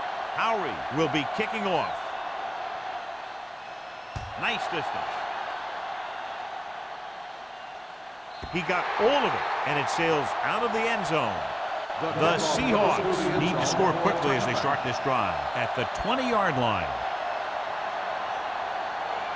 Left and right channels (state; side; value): identical; both; correlation 1.00